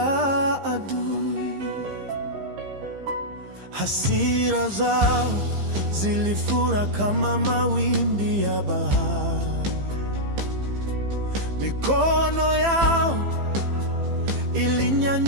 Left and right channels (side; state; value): left; late; 15 ms